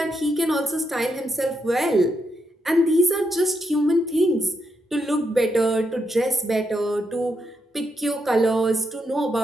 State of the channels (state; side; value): normal; both; correlation 0.81